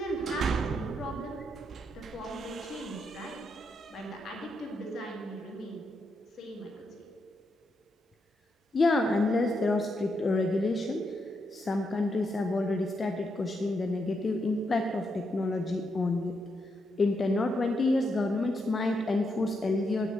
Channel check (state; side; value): normal; both; correlation 0.81